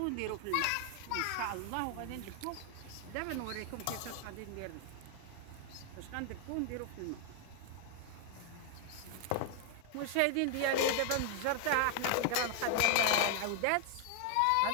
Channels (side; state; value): both; different; correlation 0.00